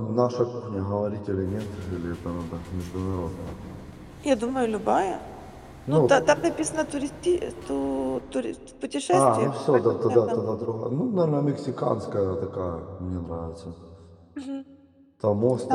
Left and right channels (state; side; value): identical; both; correlation 1.00